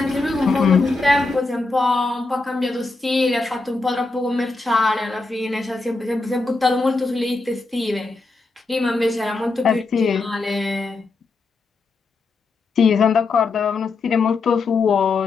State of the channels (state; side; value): quieter; right; 3.7 dB